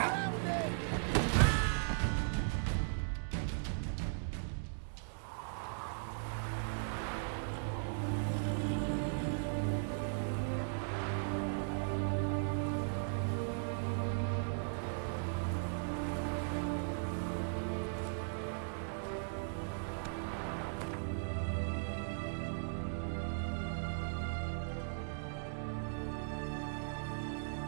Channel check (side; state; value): left; silent; digital silence